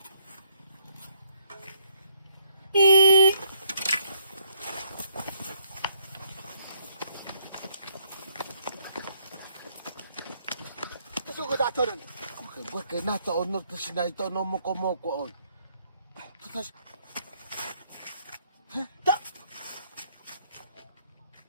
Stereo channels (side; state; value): both; inverted; correlation -0.69